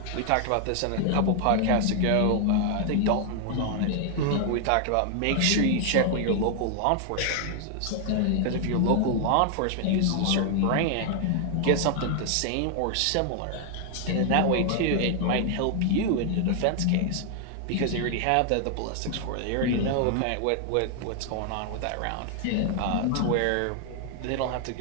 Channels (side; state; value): both; different; correlation 0.00